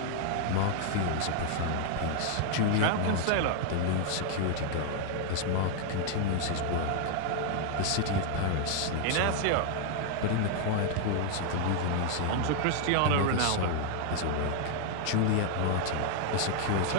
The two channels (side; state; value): both; different; correlation 0.00